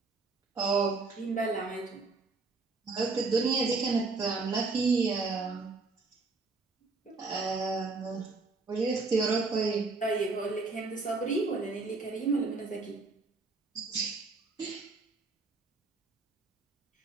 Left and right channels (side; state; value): left; quieter; 3.8 dB